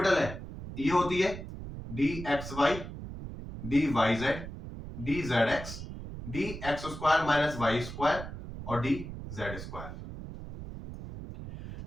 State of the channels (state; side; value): noise; right; rumble, 10 dB below the sound